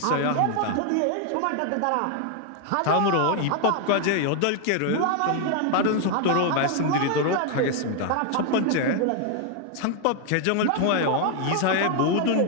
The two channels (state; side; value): different; both; correlation 0.00